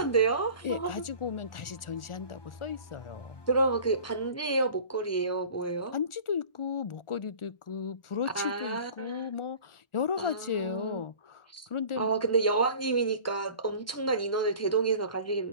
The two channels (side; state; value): right; late; 1.4 ms